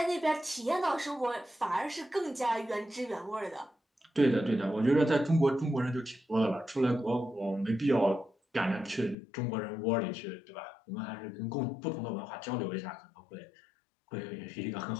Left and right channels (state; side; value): drops out; right; at 9.2 s